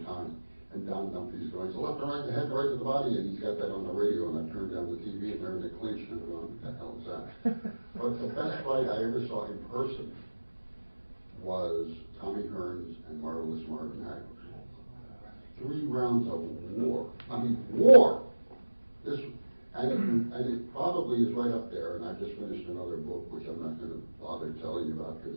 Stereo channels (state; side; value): inverted; both; correlation -1.00